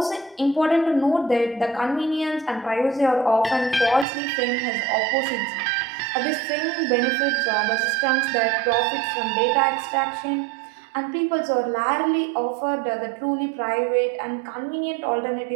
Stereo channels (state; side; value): drops out; left; at 4.0 s